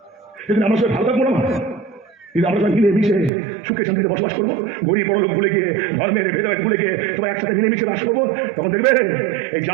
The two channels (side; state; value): left; drops out; at 3.3 s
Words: সেদিন আমার সঙ্গে ভালো থাকবো না, কিন্তু আমরা সবাই মিলেমিশে সুখে শান্তিতে বসবাস করবো, গরিব বড় লোক ভুলে গিয়ে, ধর্মের ভেদাভেদ ভুলে গিয়ে সবাই একসাথে মিলেমিশে বাস করবো। তখন দেখবে এই